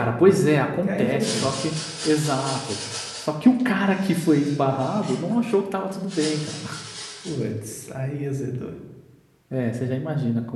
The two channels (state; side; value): identical; both; correlation 1.00